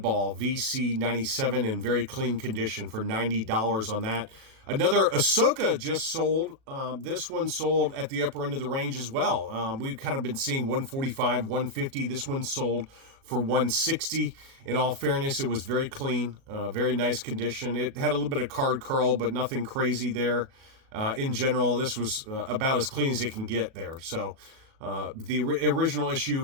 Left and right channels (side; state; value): left; late; 37 ms